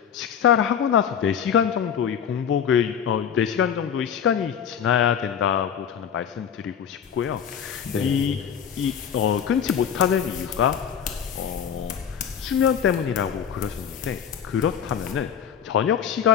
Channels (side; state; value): right; quieter; 8.2 dB